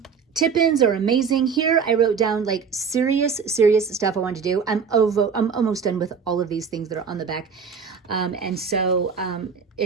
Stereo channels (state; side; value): quieter; left; 6.1 dB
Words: tip-ins are amazing. Here I wrote down serious stuff I want to do. I'm almost done with all of these things that are on the back. And so